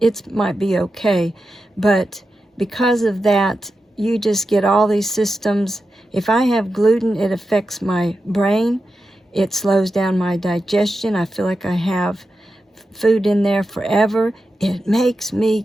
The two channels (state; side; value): normal; both; correlation 0.90